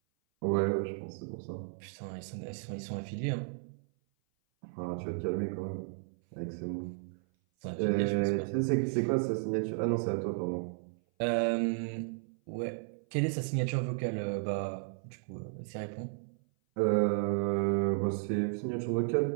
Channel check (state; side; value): silent; left; 55 dB below the other